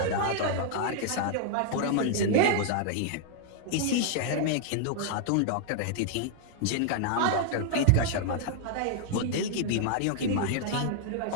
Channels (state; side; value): different; both; correlation 0.00